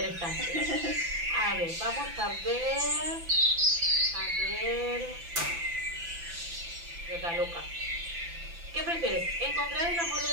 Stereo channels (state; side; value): late; left; 5.9 ms